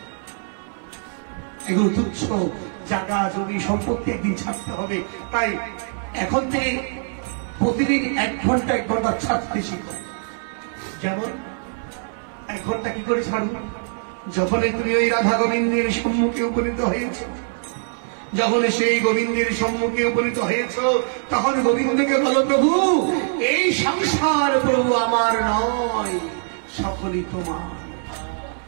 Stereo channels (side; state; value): left; silent; 64 dB below the other